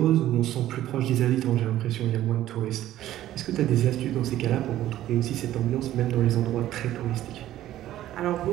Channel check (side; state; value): left; quieter; 13.5 dB